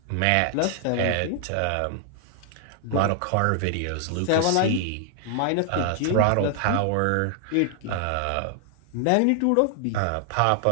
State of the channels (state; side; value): different; both; correlation 0.00